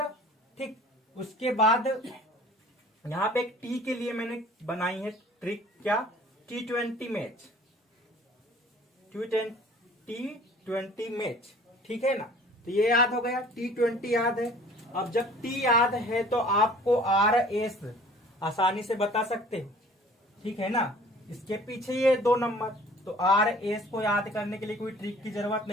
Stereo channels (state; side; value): normal; both; correlation 0.50